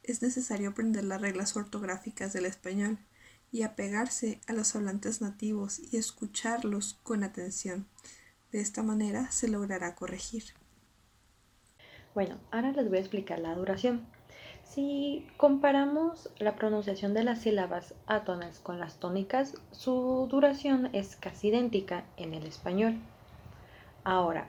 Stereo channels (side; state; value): both; identical; correlation 1.00